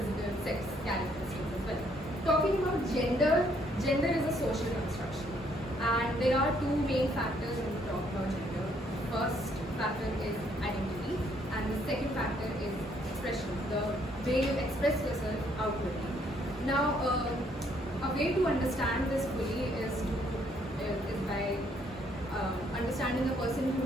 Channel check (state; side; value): normal; both; correlation 0.68